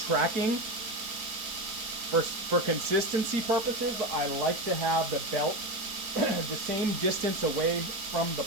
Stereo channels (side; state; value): left; late; 4.6 ms